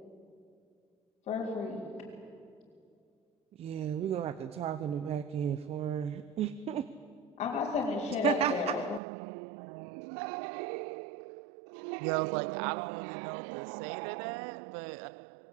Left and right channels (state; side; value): drops out; left; at 9.0 s